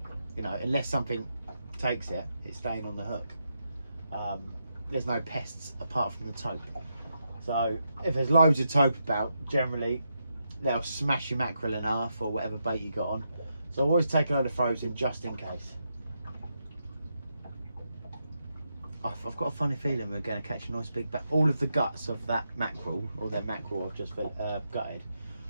you know, unless something takes it, it's staying on the hook. There's no pests apart from the taupe. So if there's loads of taupe about, generally they'll smash your mackerel in half or whatever bait you got on. So I always take a load of frozen just in case. I've got a funny feeling we're going to catch a nice big bat. All of the guts of that mackerel, or their mackerel I've just gutted,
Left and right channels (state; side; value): inverted; both; correlation -0.83